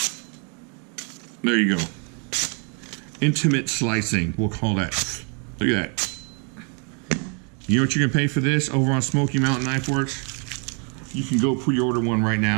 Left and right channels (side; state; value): left; quieter; 38.2 dB